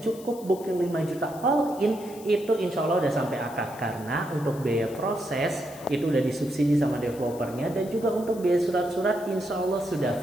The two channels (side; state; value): left; noise; hiss, 20 dB below the sound